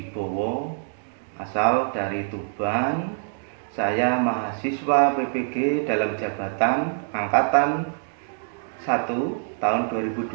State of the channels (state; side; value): silent; left; 62 dB below the other